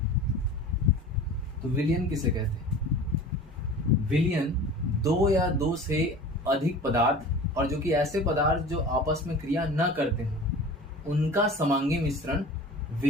तो विलयन किसे कहते हैं? विलयन दो या दो से अधिक पदार्थ और जो कि ऐसे पदार्थ जो आपस में क्रिया न करते हैं उनका समांगी मिश्रण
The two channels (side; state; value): both; normal; correlation 0.39